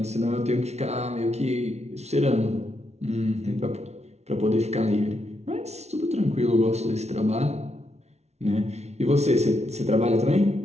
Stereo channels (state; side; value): late; left; 0.31 ms